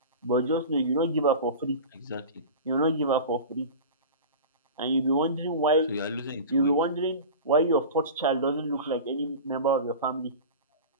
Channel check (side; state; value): both; inverted; correlation -0.32